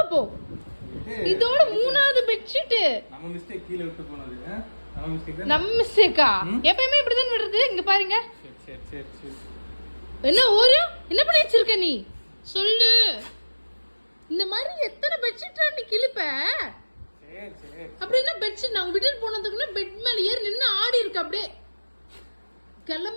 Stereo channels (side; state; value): both; inverted; correlation -1.00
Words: இதோட மூணாவது பெட்ஷீட். நம்ம மிஸ்டேக், கீழ விட்டு போனது நம்ம மிஸ்டேக் தான். நம்ம மிஸ்டேக்கா? எப்பவுமே இப்படி தான் விடுறது. இங்க பாருங்க. சரி என்ன ஓரியோ, என்ன பண்ணி வச்சிருக்க நீ சொல்லு. இந்த மாதிரி எத்தனை பெட்ஷீட் நீ கிழிப்ப? சரி அப்படின்னா பெட்ஷீட் நான் விட்டுட்டு போனதுக்குள்ள பெட் மேல ஏறி நின்று ஆடி இருக்க. அப்படியே